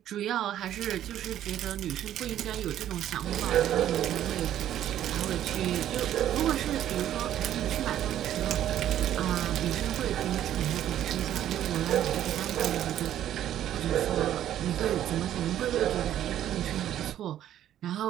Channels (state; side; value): quieter; left; 11.6 dB